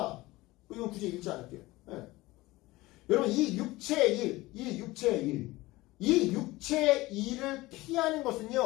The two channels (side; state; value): right; quieter; 19.7 dB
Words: 이건 굳이 읽지 않을게요. 네. 여러분, 이 육체의 일을 피하는